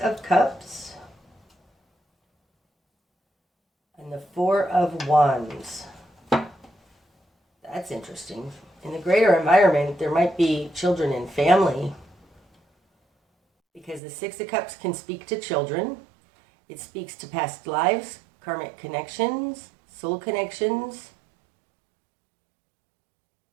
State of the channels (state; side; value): drops out; left; at 14.0 s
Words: Cups and the Four of Wands. That's interesting. In the greater environment, there might be children and family, because the Six of Cups can speak to children. It speaks to past lives, karmic connections, soul connections.